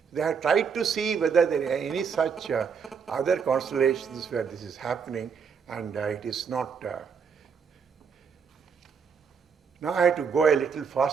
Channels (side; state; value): left; quieter; 6.3 dB